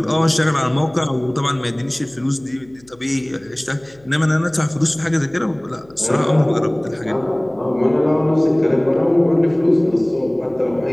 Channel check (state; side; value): noise; left; hum, 29 dB below the sound